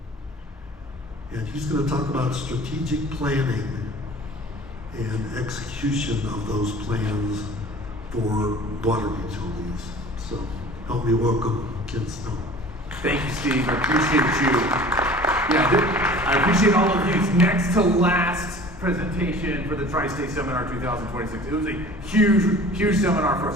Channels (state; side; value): normal; both; correlation 0.44